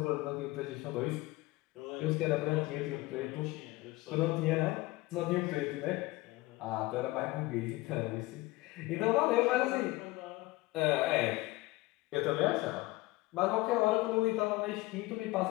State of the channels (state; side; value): quieter; right; 20.5 dB